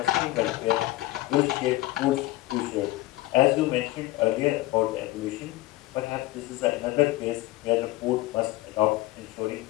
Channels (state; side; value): quieter; right; 17.5 dB